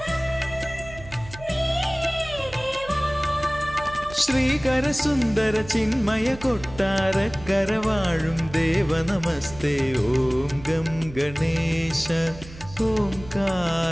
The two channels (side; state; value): right; noise; hum, 16 dB below the sound